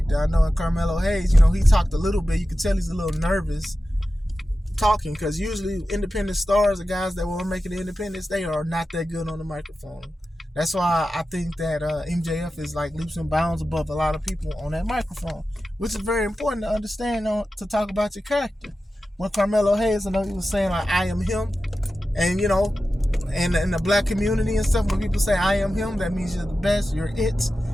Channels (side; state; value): both; normal; correlation 0.93